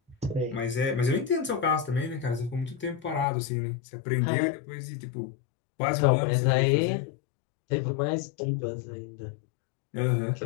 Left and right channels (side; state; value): right; drops out; at 3.2 s